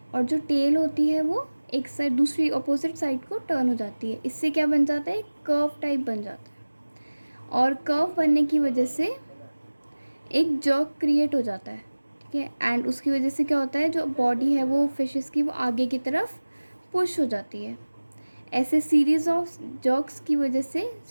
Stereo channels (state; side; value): inverted; both; correlation -1.00